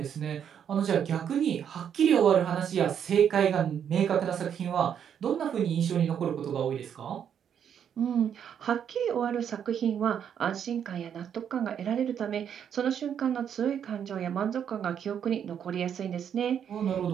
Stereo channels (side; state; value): left; quieter; 8.5 dB